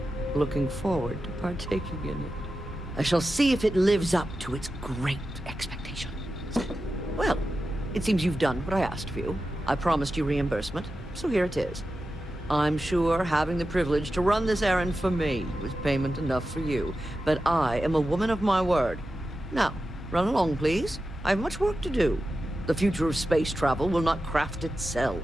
looking forward to partaking in it. I shall see if it lives up to its great expectations. Well, it seems you've done what I asked of you. I promised you reimbursement, so here it is. I'm sure having the privilege to run this errand for me was payment enough for you, but I am a woman of my word. Now, run along, please. I have much work to do. The future of space travel will not craft itself.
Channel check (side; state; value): both; normal; correlation 0.92